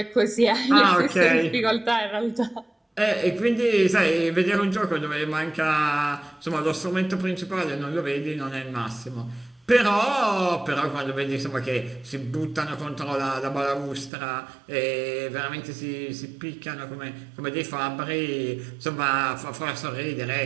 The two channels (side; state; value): left; drops out; at 14.1 s